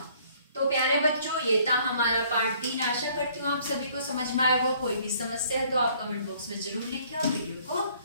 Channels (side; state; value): both; inverted; correlation -0.60